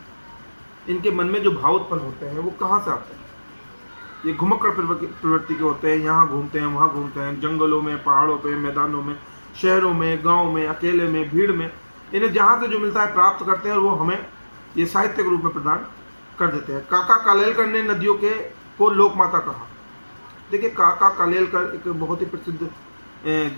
इनके मन में जो भाव उत्पन्न होते हैं वो कहाँ से आते हैं? ये घुमक्कड़ प्रवृत्ति के होते हैं। यहाँ घूमते हैं, वहाँ घूमते हैं, जंगलों में, पहाड़ों पे, मैदानों में, शहरों में, गाँव में, अकेले में, भीड़ में, इन्हें जहाँ से जो मिलता है प्राप्त करते हैं और वो हमें ये साहित्य के रूप में प्रदान कर देते हैं। काका कालेलकर ने नदियों को लोकमाता कहा। देखिए काका कालेलकर एक बहुत ही प्रसिद्ध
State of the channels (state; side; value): inverted; both; correlation -1.00